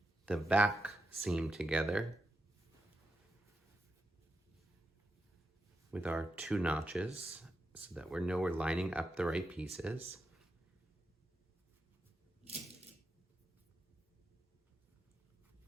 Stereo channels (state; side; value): normal; both; correlation 0.87